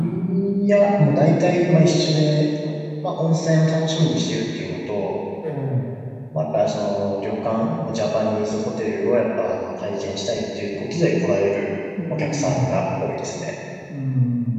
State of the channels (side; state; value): both; identical; correlation 1.00